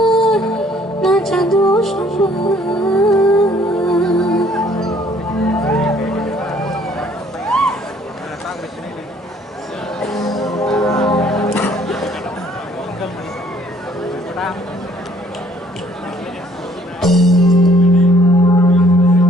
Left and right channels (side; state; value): both; normal; correlation 0.60